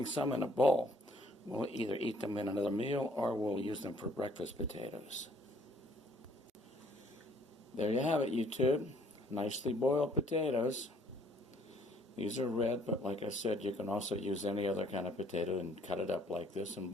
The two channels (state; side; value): normal; both; correlation 0.61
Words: some in a bowl. We'll either eat them in another meal or we'll use them for breakfast potatoes. There you have it, YouTube. Nicely boiled potatoes. These are red, but like I said, you can also use any other kind of potato and cut it up like this and